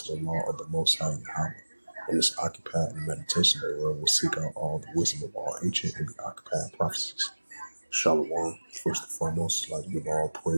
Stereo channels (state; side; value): inverted; both; correlation -1.00